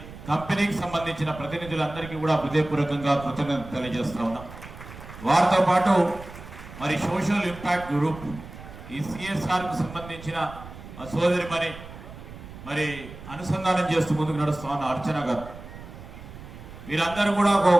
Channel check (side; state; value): right; noise; rumble, 15 dB below the sound